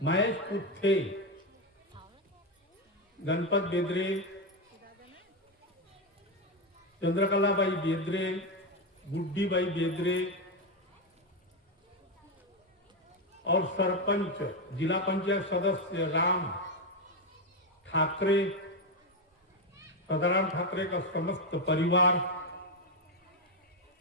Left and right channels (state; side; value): normal; both; correlation 0.08